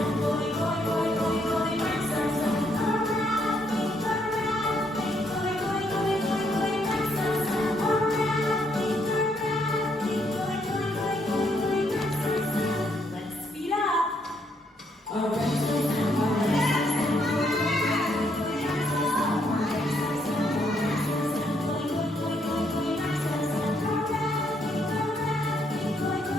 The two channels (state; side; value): normal; both; correlation 0.73